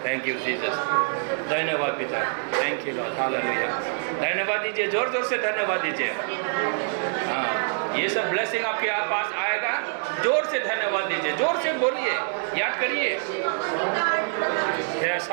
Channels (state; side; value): silent; left; digital silence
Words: थैंक यू जीसस, धन्यवाद पिता, थैंक यू लॉर्ड। हालेलुया, धन्यवाद दीजिए, जोर जोर से धन्यवाद दीजिए। हाँ ये सब ब्लेसिंग आपके पास आएगा। जोर से धन्यवाद दीजिए, जोर से बोलिए, याद करिए। Yes